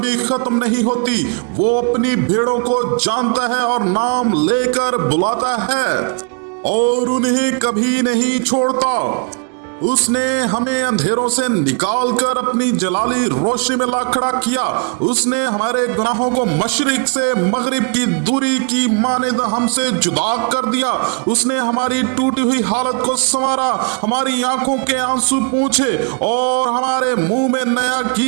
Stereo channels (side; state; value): left; quieter; 37.3 dB